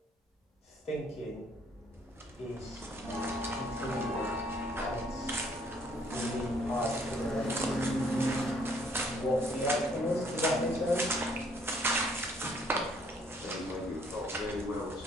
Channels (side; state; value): both; normal; correlation 0.64